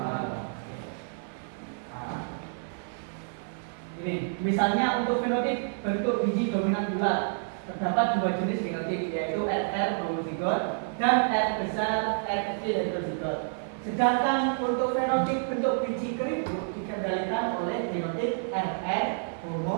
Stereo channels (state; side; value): silent; left; digital silence